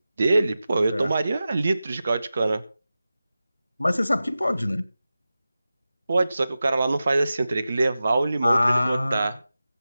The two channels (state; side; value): inverted; both; correlation -0.94